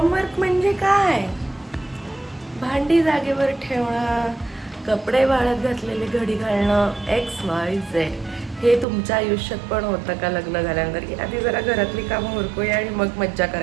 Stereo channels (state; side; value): drops out; left; at 8.8 s